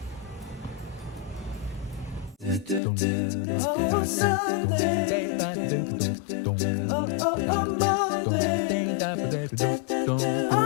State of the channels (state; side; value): drops out; right; at 2.8 s